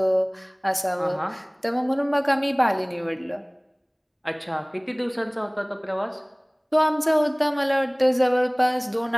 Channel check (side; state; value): both; identical; correlation 1.00